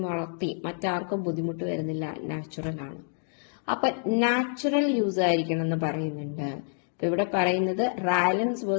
വളർത്തി, മറ്റാർക്കും ബുദ്ധിമുട്ട് വരുന്നില്ല, നാച്ചുറൽ ആണ്. അപ്പൊ നാച്ചുറൽ യൂസ് ആയിരിക്കണം എന്ന് പറയുന്നുണ്ട്. ഇപ്പൊ ഇവിടെ പറയുന്നത് Rylands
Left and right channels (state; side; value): silent; right; digital silence